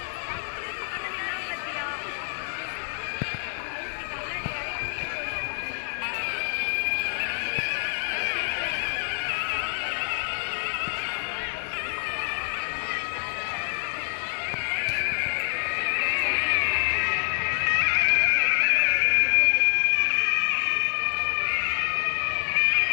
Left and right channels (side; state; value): right; silent; digital silence